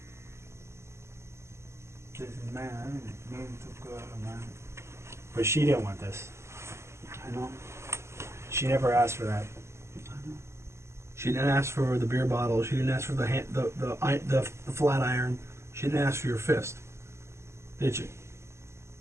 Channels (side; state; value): left; late; 0.13 ms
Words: Listen, man, I didn't mean to go, man. But she didn't want this. I know. She never asked for that. She didn't ask for the beer bottle. She didn't ask for the flat iron. She didn't ask for your fist, did she?